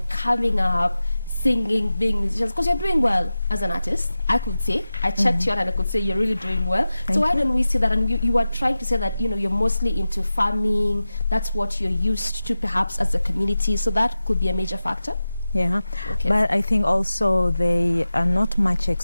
coming up, singing, being musicians, because you're doing well as an artist, I could say. I checked you out and I could say you're really doing well. So why don't we see that? And you are trying to say that, you're mostly into farming. That's what you're used to perhaps as a community. So that could be a major factor. Yeah. Okay. But I think also they are not much there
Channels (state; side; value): inverted; both; correlation -0.94